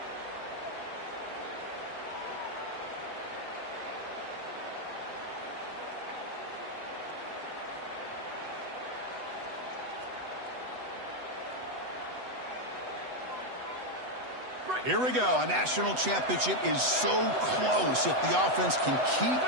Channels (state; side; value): late; left; 8.0 ms